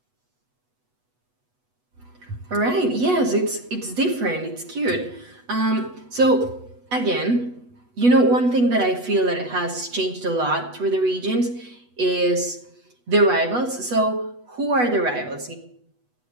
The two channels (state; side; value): late; left; 8.1 ms